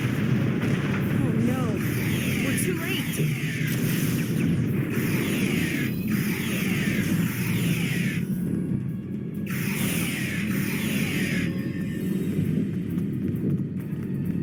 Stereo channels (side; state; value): both; identical; correlation 1.00